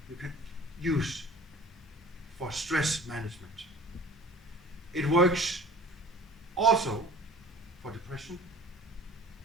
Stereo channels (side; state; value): both; normal; correlation 0.46